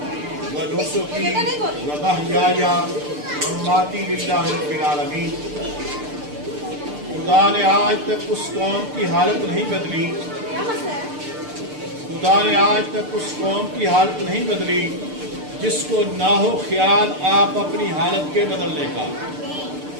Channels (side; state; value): left; late; 6.7 ms